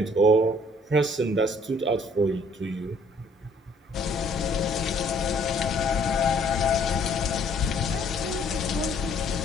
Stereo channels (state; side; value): normal; both; correlation 0.61